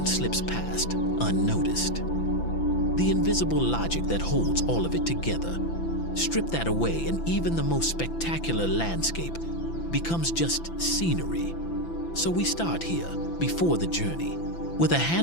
slips past, unnoticed. The invisible logic that holds all of it together. Strip that away and even the most spectacular landscape becomes just scenery. So we start here, before the journey, with a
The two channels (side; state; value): right; late; 5.9 ms